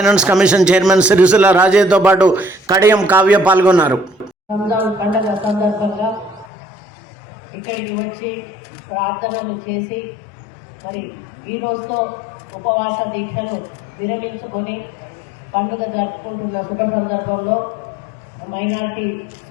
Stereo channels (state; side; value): drops out; right; at 6.5 s